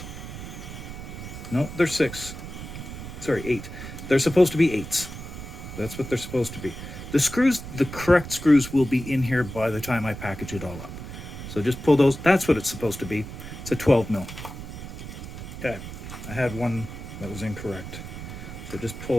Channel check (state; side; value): noise; right; rumble, 10 dB below the sound